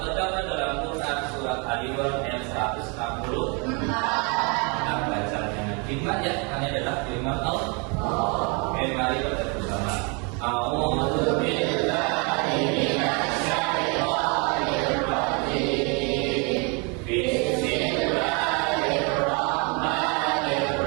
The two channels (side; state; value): left; quieter; 32.8 dB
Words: terdapat dalam Quran surat Al-Imran ayat 160. Kita bacanya firman ya, ini adalah firman Allah. Oke, mari kita bersama. A'udzu billahi minasyaitonir rajim. Bismillahirrahmanirrahim.